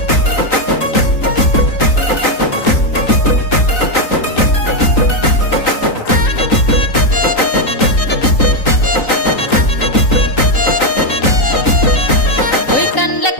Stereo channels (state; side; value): late; right; 3.9 ms